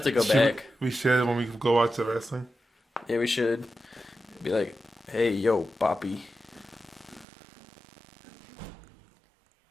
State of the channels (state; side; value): drops out; left; at 7.2 s